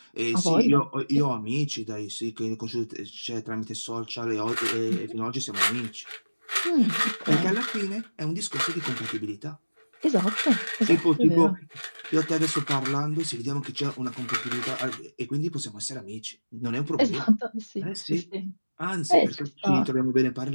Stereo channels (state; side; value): inverted; both; correlation -1.00